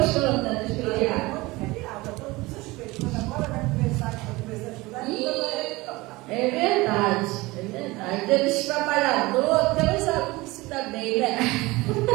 né, de feriado? É verdade. Temos trabalhador, temos alunos que se dá bem, né?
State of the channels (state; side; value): quieter; left; 21.5 dB